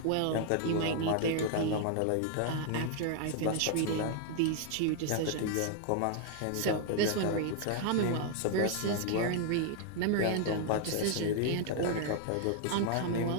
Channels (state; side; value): different; both; correlation 0.00